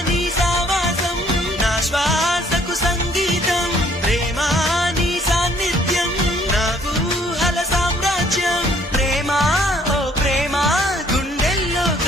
నీ సావాసం నా శ్వాసకు సంగీతం ప్రేమ నీ సాన్నిధ్యం నా ఊహల సామ్రాజ్యం ప్రేమ ఓ ప్రేమ గుండెల్లో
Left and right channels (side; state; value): both; normal; correlation 0.62